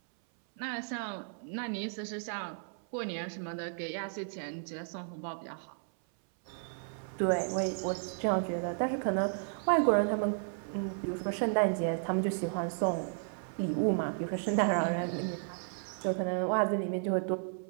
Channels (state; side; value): silent; left; 55 dB below the other